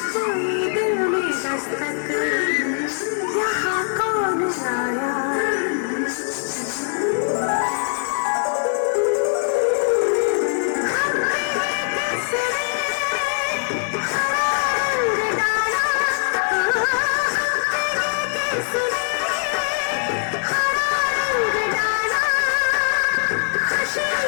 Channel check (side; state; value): right; silent; 64 dB below the other